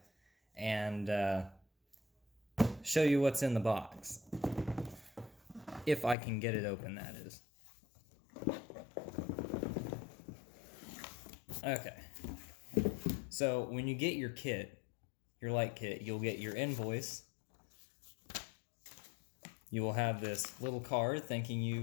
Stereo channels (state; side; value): drops out; right; at 6.2 s